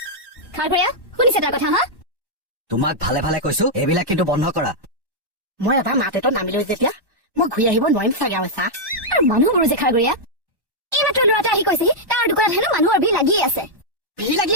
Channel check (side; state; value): left; late; 1.1 ms